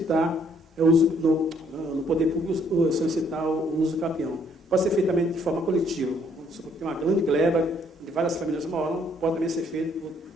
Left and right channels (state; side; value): normal; both; correlation 0.66